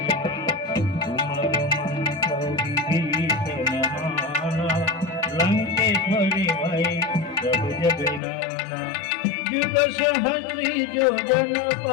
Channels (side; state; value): right; drops out; at 8.2 s